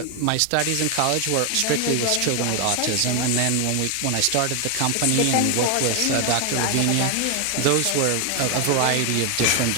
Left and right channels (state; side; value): different; both; correlation 0.01